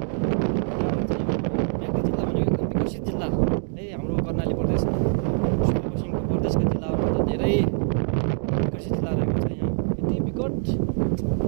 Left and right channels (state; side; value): silent; left; digital silence